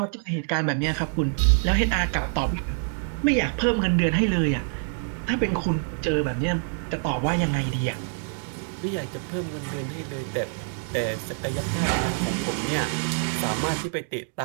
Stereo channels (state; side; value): silent; left; 61 dB below the other